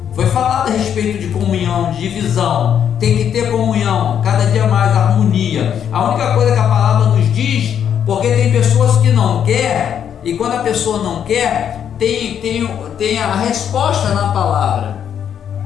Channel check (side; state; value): right; quieter; 8.8 dB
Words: Foi falado a respeito de comunhão, de divisão. Tem que ter comunhão, cada dia mais harmonia. A única coisa que a palavra nos diz, porque tem pessoas que não querem, e quando a pessoa não quer, tem a resposta na palavra.